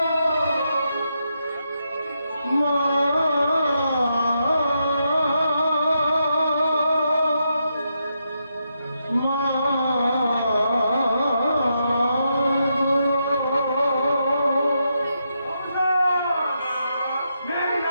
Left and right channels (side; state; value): both; inverted; correlation -0.82